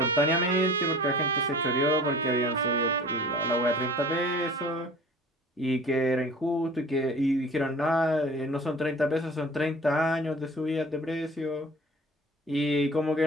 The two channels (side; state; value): both; normal; correlation 0.44